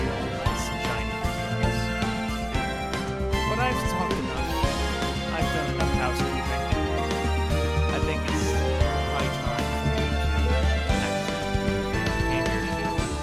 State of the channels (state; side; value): identical; both; correlation 1.00